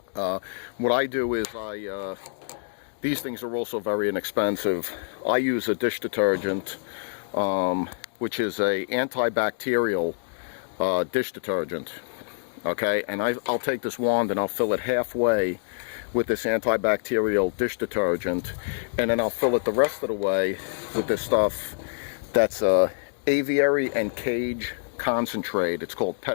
What I do is these things are also very inexpensive. I use a dish detergent, which is a antibacterial dish detergent. Okay, and I'll take this wand and I'll fill it halfway with this antibacterial dish detergent, and then I'll fill it the rest of the way with this stuff that's aviary and cage concentrate. It's called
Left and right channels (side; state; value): right; silent; digital silence